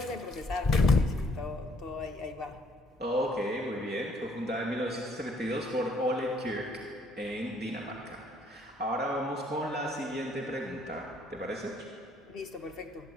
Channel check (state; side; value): normal; both; correlation 0.65